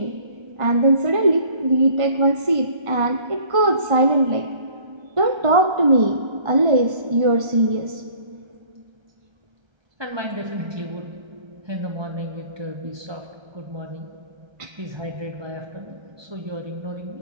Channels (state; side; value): late; left; 1.3 ms